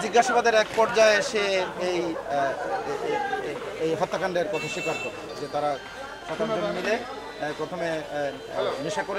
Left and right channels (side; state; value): both; identical; correlation 1.00